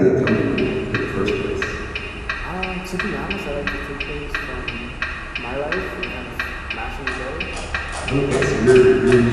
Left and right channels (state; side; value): identical; both; correlation 1.00